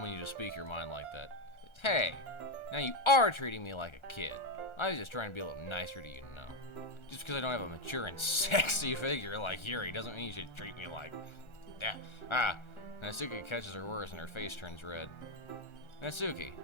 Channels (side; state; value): right; late; 1.3 ms